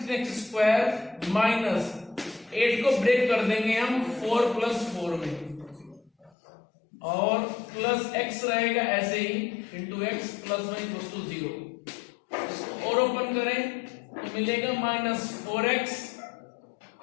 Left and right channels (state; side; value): drops out; right; at 6.3 s